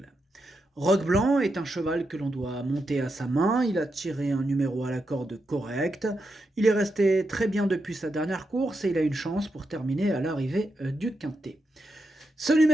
Roc Blanc est un cheval que l'on doit monter à sa main, il a tiré un numéro à la corde correct, il est resté très bien depuis sa dernière course et il a une chance pour terminer à l'arrivée du quintet. Ce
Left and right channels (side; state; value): both; normal; correlation 0.85